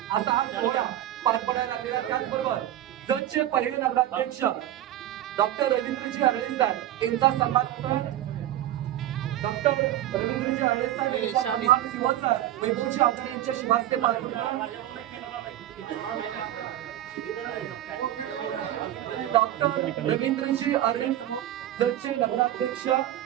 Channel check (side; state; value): left; quieter; 12.9 dB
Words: असा हा सोहळा पार पडायला लागलेला. त्याचबरोबर जतचे पहिले नगराध्यक्ष डॉक्टर रवींद्रजी आरळे साहेब यांचा सन्मान होतोय. डॉक्टर रवींद्रजी आरळे साहेब यांचा सन्मान शिवसर वैभवजी आचार्य यांच्या शुभास्ते पार पडतोय. डॉक्टर रवींद्रजी आरळे जतचे नगराध्यक्ष